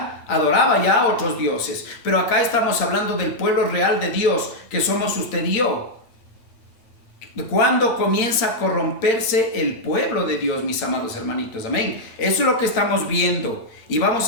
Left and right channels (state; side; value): late; right; 8.7 ms